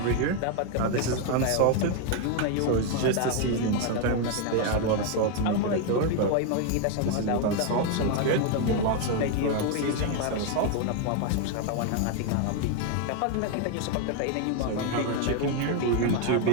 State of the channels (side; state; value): both; different; correlation 0.01